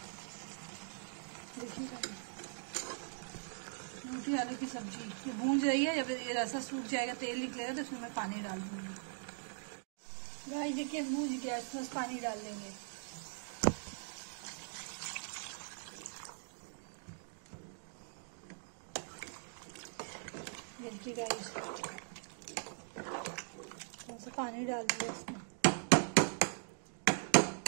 न्यूट्री आलू की सब्जी ये भून रही है। जब ये रसा सूख जाएगा, तेल निकलेगा, तो इसमें मैं पानी डाल दूंगी। गाइस देखिए भून गया, इसमें पानी डाल देंगे। देखिए गाइस थोड़ा सा पानी डाल दिया इसमें।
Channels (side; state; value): left; silent; digital silence